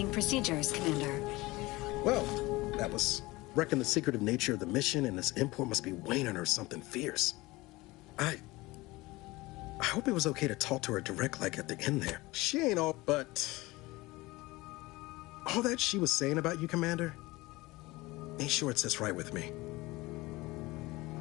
procedures, Commander. Well, that was wrecking the secretive nature of the mission, and this import must be waning or something fierce. I hope it was okay to talk to her direct like at the end there. She ain't all, but... all that she was saying about you, Commander, ain't sure it sits right with me.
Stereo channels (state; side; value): quieter; right; 20.9 dB